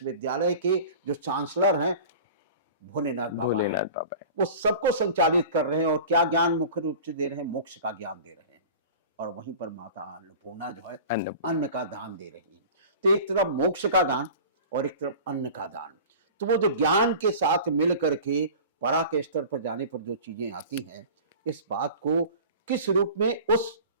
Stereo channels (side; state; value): both; inverted; correlation -0.39